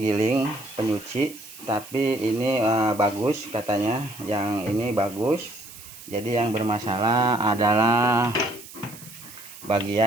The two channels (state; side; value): noise; right; hiss, 17 dB below the sound